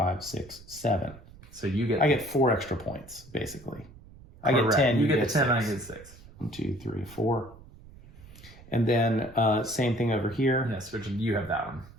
6, 7. So I get 4 extra points basically. I get 10. You get 10. 6. I get 6. 1, 2, 3, 4. And then same thing over here. Yes, which you have that one.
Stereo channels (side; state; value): right; noise; rumble, 20 dB below the sound